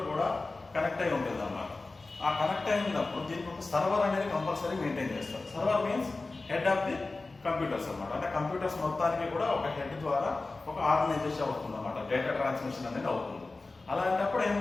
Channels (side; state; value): right; quieter; 3.4 dB